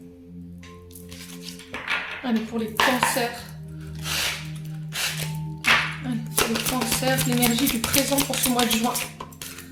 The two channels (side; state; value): both; identical; correlation 1.00